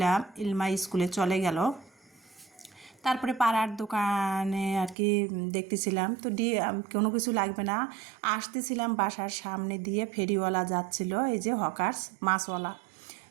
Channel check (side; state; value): left; drops out; at 5.0 s